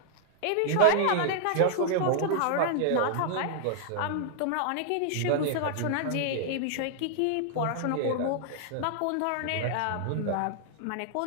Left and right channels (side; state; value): both; different; correlation -0.01